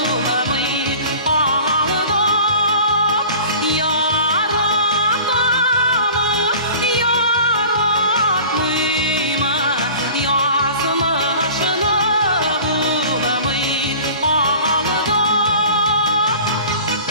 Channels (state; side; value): inverted; both; correlation -0.42